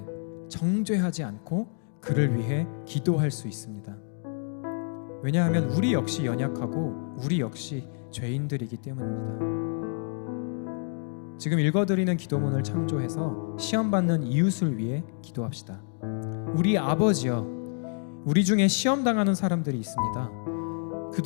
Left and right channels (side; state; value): right; silent; 59 dB below the other